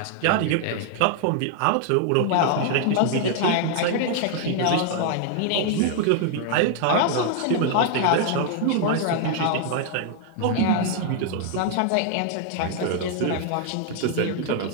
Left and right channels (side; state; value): both; different; correlation 0.00